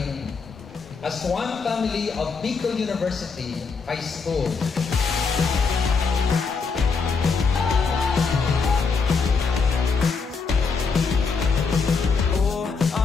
as one family of Bicol University High School. Oh,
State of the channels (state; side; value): quieter; right; 5.0 dB